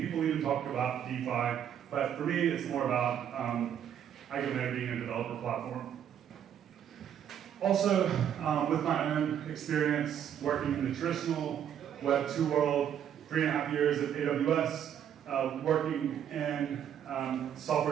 even talk about DeFi. But for me, it's more about EigenLayer being a developer platform. Also, with my own experience working in the traditional Web 2 world, 3.5 years at AWS, working in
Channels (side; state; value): left; quieter; 9.4 dB